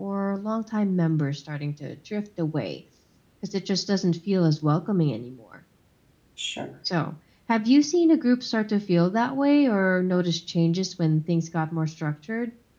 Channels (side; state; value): both; identical; correlation 1.00